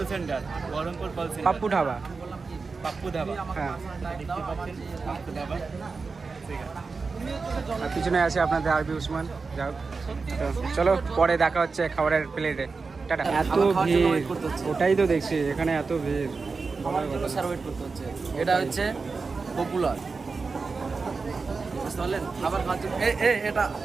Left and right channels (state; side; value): quieter; left; 4.5 dB